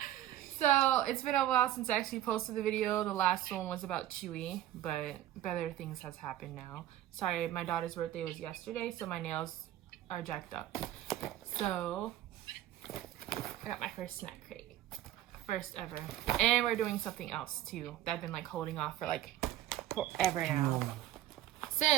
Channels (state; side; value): quieter; left; 13.2 dB